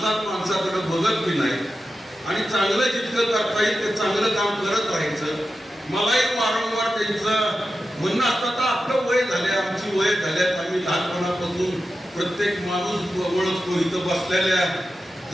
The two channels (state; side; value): normal; both; correlation 0.91